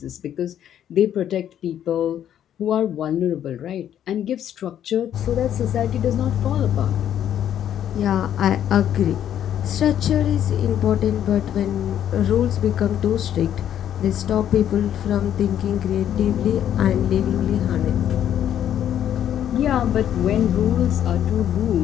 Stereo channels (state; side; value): quieter; right; 10.3 dB